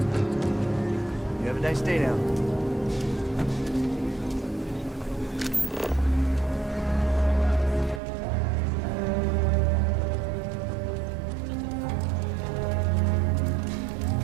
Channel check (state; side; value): drops out; left; at 8.0 s